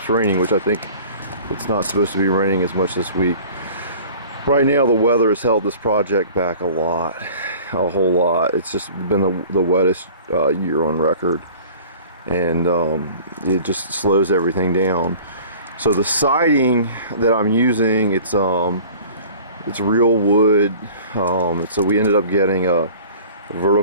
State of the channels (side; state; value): both; inverted; correlation -0.46